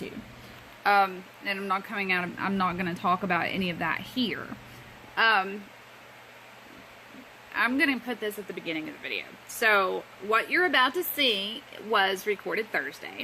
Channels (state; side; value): identical; both; correlation 1.00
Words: And I'm not going to talk about any of that here. I'm going to put this at the beginning of the video. So, what you're about to see was recorded